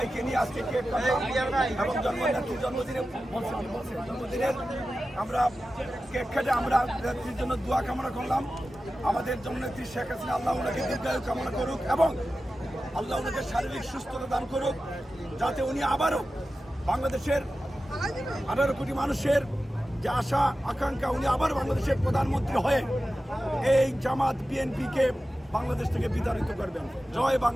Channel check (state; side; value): normal; both; correlation 0.94